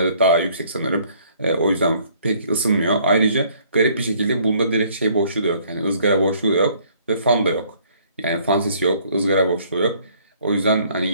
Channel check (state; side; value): inverted; both; correlation -0.61